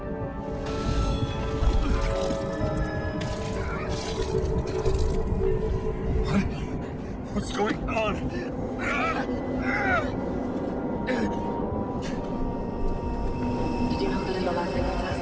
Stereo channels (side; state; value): both; identical; correlation 1.00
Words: What's going on? Did you know that in the last